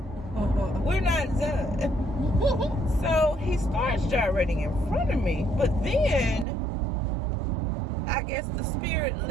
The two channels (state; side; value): drops out; left; at 6.5 s